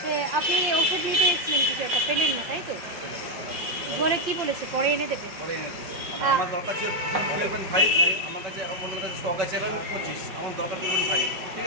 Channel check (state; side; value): late; left; 5.7 ms